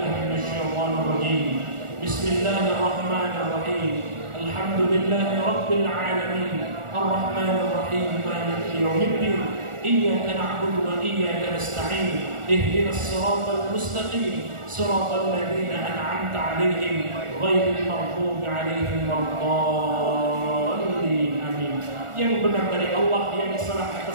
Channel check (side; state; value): left; late; 1.4 ms